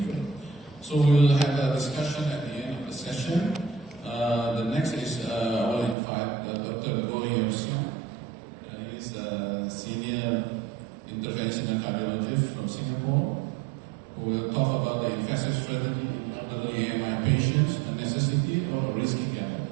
So we'll have a discussion at the end of the session. The next is I will invite Dr. Goh Yeo-Siong. He's a senior interventional cardiologist from Singapore, who will talk about the invasive strategy in elderly AMI patients, a necessity or a risky gamble.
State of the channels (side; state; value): left; drops out; at 6.0 s